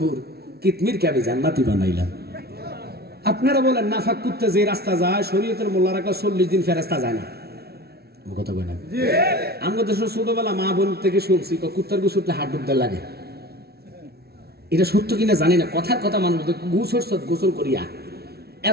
কিতমির কে আমি জান্নাতি বানাইলাম। আপনারা বলেন নাফাক কুত্তে যে রাস্তা যায়, শরীয়তের মোল্লারা 40 দিন ফেরেস্তা যায় না। কথা কই না? আমাদের দেশের ছোটবেলা মা বোন থেকে শুনছি কুত্তার গু ছুটলে হাত ডুবতে লাগে। এটা সত্য কিনা জানি না, কথার কথা মানুষ গু ছড়ছ গোসল করিয়া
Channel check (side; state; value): left; late; 0.46 ms